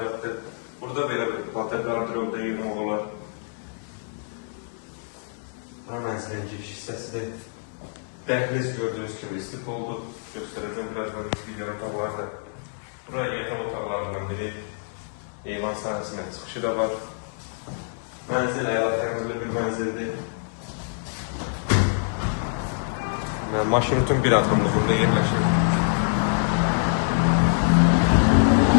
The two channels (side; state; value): right; silent; digital silence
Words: Burada belə bir batar qardırobda yığmaq olar. Bu mənzilin giriş hissəsidir. Dəhliz gördüyünüz kimi istif oldu. Göstərəcəm birazdan videonun qabaqlarda. Buraya yataq otaqlarından biri. Eyvan sahəsində çıxışı da var. Mənzil əyalətlərində bir mənzildir. Maşın bütün bir adımda burada yerləşir.